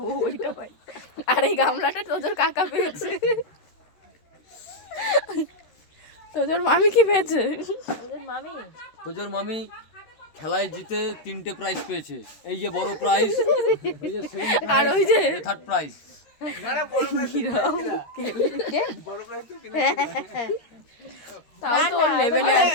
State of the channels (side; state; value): right; late; 13 ms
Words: ওইটা ভাই। আর এই গামলাটা তোজোর কাকা পেয়েছে। তোজোর মামি কি পেয়েছে? তোজোর মামি খেলায় জিতে 3টে প্রাইজ পেয়েছে। এই যে বড় প্রাইজ, ওই যে আর ওই যে থার্ড প্রাইজ। তাও তো লেভেলে